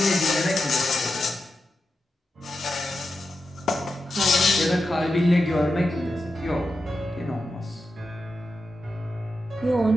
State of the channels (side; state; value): both; normal; correlation 0.89